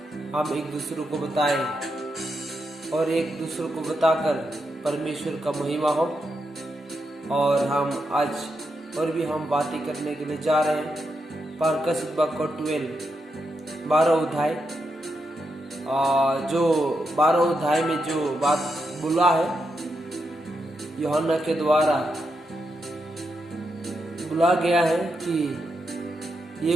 हम एक दूसरे को बताएं और एक दूसरे को बताकर परमेश्वर का महिमा हो। और हम आज और भी हम बातें करने के लिए जा रहे हैं। पारकसित बाग 12 अध्याय, जो 12 अध्याय में जो बात बोला है, यूहन्ना के द्वारा बोला गया है कि ये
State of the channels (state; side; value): normal; both; correlation 0.84